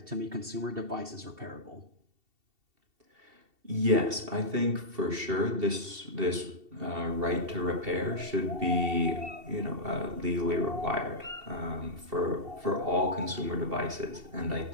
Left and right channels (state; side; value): late; left; 2.7 ms